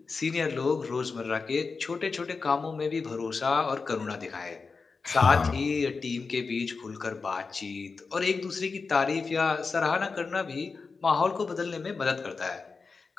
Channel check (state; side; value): quieter; right; 4.6 dB